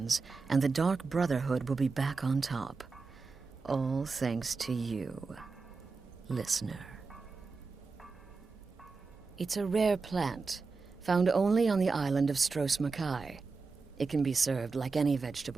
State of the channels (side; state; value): left; quieter; 4.4 dB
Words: and the Dark Brotherhood will be back on top. All thanks to you, listener. It's a rare plant, found only on the island of Stros Makai. It can be served like any